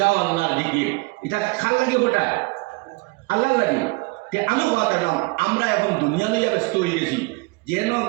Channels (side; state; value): left; quieter; 26.7 dB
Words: আল্লাহর জিকির এটা খাল লাগি ওটা আল্লাহর লাগি তে আমি কথা আমরা এখন দুনিয়া লইয়া ব্যস্ত হয়ে গেছি যেন